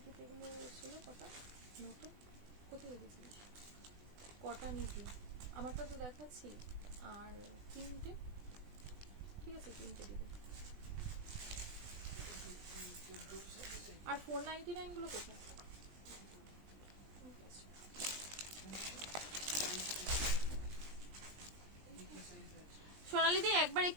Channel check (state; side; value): late; left; 20 ms